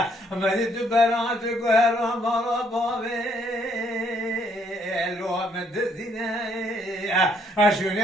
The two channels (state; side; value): normal; both; correlation 0.68